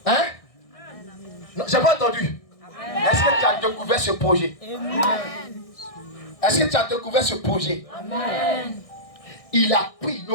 Hein? Non, j'ai pas entendu. Est-ce que tu as découvert ce projet? Est-ce que tu as découvert ce projet? Il a pris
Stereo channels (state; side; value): late; right; 1.6 ms